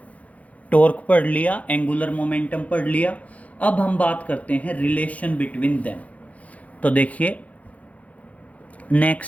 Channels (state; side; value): late; right; 0.068 ms